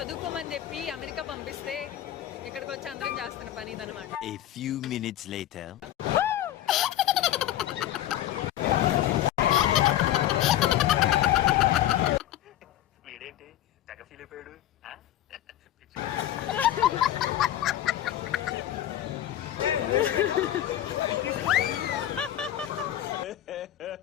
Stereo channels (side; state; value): right; quieter; 12.6 dB